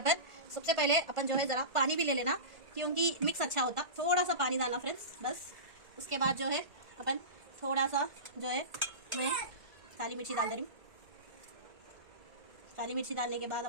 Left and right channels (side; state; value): left; late; 1.5 ms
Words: अपन। सबसे पहले अपन जो है ज़रा पानी भी ले लेना, क्योंकि मिक्स अच्छा होता, थोड़ा सा पानी डालना फ्रेंड्स बस। उसके बाद जो है अपन थोड़ा सा जो है मैं काली मिर्ची डाल दे रही हूँ। काली मिर्ची डालने के बाद